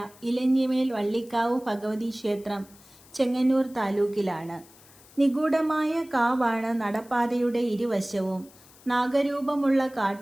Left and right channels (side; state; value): left; noise; hiss, 25 dB below the sound